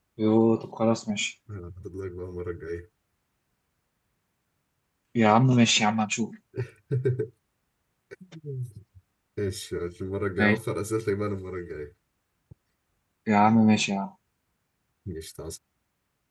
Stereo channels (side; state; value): both; identical; correlation 1.00